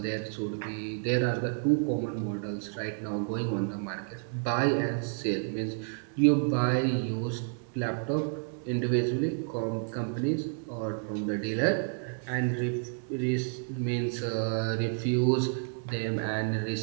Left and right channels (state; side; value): silent; left; 58 dB below the other